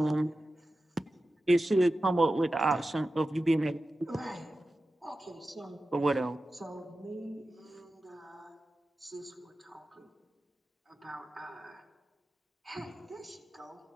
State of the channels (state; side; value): normal; both; correlation 0.94